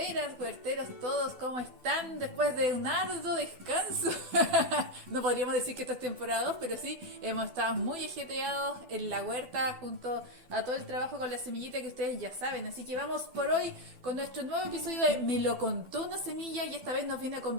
huerteros, todos, ¿cómo están? Después de un arduo descanso. No podríamos decir que esto es temporada 2, pero sí, hemos estado muy ajetreados en la huerta junto a todo el trabajo con la semillita que ustedes ya saben. Así que vamos por hoy con nuestro nuevo episodio de Me lo contó una semilla y esta vez nos viene a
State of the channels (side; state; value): left; late; 12 ms